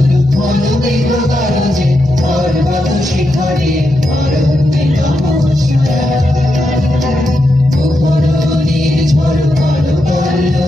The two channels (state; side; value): normal; both; correlation 0.85